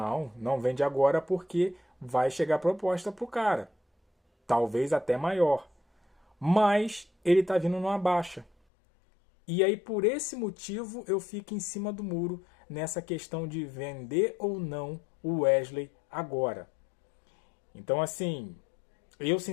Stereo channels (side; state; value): right; drops out; at 8.5 s